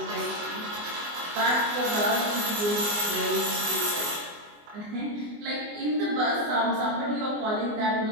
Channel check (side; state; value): left; late; 24 ms